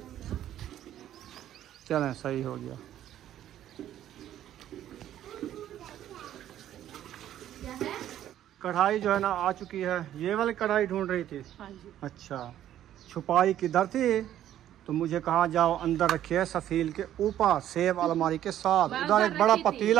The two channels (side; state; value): left; quieter; 11.8 dB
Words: चलें सही हो गया। कढ़ाई जो है ना आ चुकी है। ये वाली कढ़ाई ढूंढ रही थी? हाँ जी। अच्छा छुपाई किधर थी? तो मुझे कहा जाओ अंदर रखिए सफील के ऊपर सेब अलमारी के साथ। उधर एक बड़ा